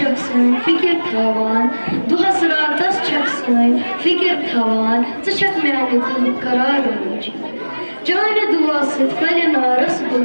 سن فکر تھاوان دہس راتس چک سن فکر تھاوان ژٕ میانہِ دلُک قرار موجی چانہِ دعا سۭتۍ پھلہِ نارس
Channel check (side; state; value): both; inverted; correlation -1.00